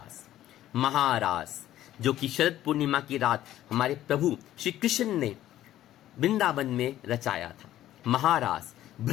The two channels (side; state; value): right; quieter; 13.2 dB